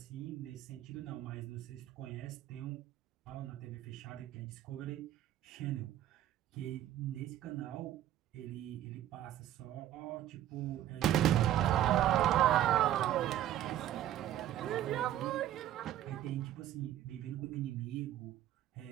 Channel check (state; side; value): quieter; left; 12.2 dB